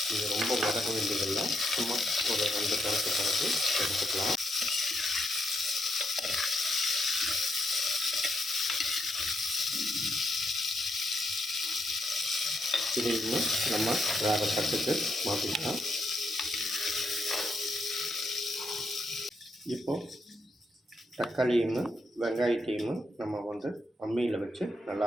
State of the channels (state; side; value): normal; both; correlation 0.79